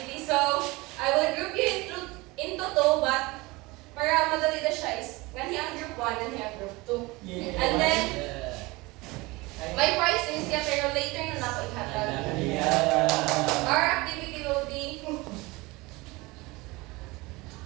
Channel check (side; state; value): left; quieter; 22.9 dB